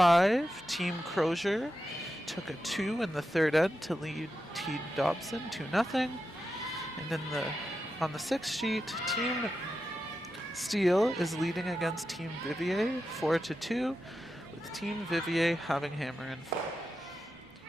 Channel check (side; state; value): both; normal; correlation 0.89